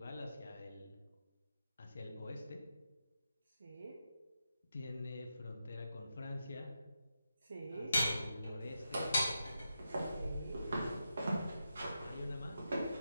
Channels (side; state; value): both; inverted; correlation -0.86